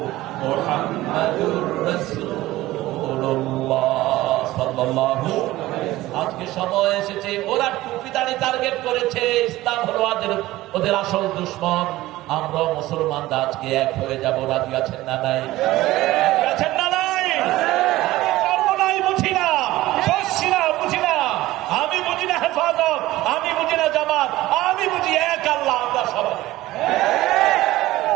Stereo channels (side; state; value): left; quieter; 17.0 dB